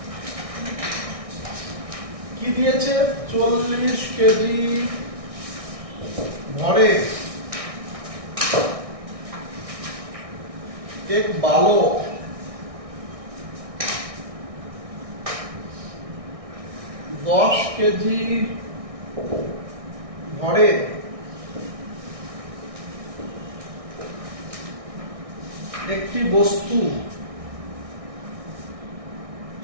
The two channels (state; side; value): late; left; 1.6 ms